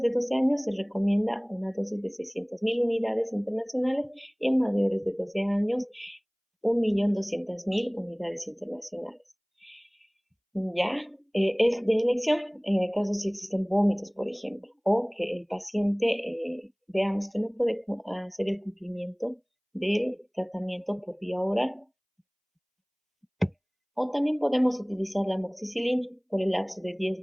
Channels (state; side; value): identical; both; correlation 1.00